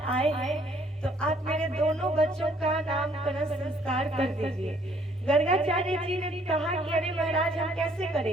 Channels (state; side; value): normal; both; correlation 0.63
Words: आए हैं तो आप मेरे दोनों बच्चों का नामकरण संस्कार कर दीजिए। गर्गाचार्य जी ने कहा कि अरे महाराज हम कैसे